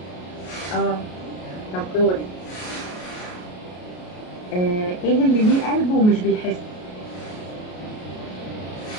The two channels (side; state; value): right; late; 33 ms